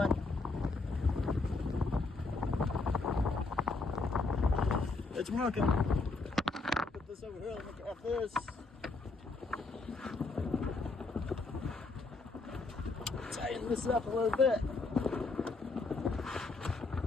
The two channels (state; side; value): quieter; right; 3.7 dB